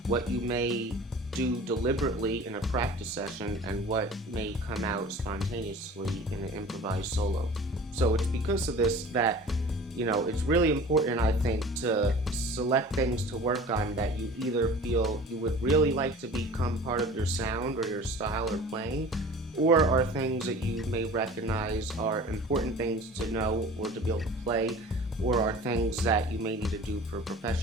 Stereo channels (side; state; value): both; normal; correlation 0.42